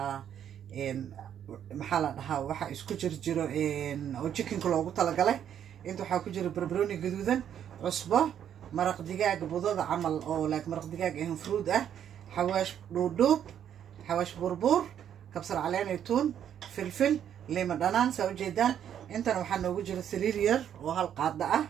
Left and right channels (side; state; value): left; quieter; 9.5 dB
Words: محل وحا isku jiro oo chicken loogu talagalay inta waxa ku jira barbarooni gaduudan cusbo maraq digaag budada camal oo maraq digaag fruit ah xawaash dhuudhuub xawaash burbur kabsar caleen tuun filfil liima dhanaan soo jeedaan intan waxa noogu jira saliid yar oo hal qaada ah